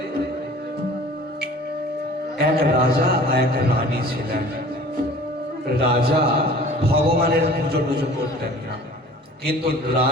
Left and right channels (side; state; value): both; normal; correlation 0.46